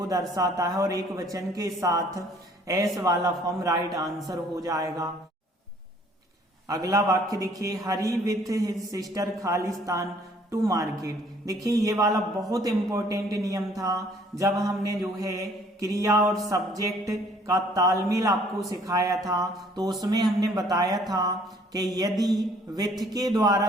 दर्शाता है और एक वचन के साथ एस वाला फॉर्म राइट आंसर हो जाएगा। अगला वाक्य देखिए, हरी विथ हिज सिस्टर खालिस्तान टू मार्केट। देखिए ये वाला बहुत इंपॉर्टेंट नियम था जब हमने जो है क्रिया और सब्जेक्ट का तालमेल आपको सिखाया था, तो उसमें हमने बताया था कि यदि विथ के द्वारा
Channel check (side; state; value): both; normal; correlation 0.59